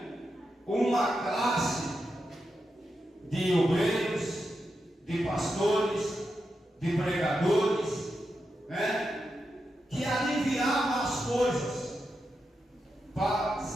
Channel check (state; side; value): normal; both; correlation 0.87